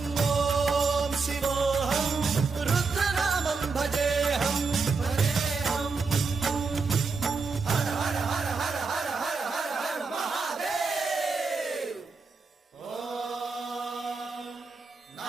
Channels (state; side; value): quieter; left; 4.5 dB